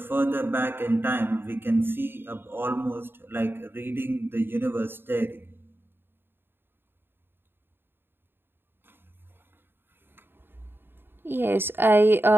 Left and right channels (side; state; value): left; late; 0.10 ms